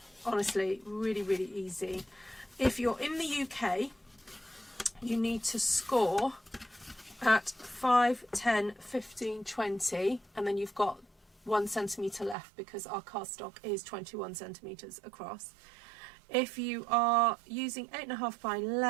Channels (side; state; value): left; drops out; at 12.4 s